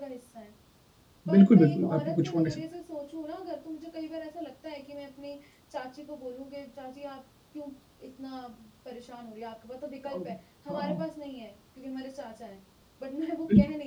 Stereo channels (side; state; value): both; identical; correlation 1.00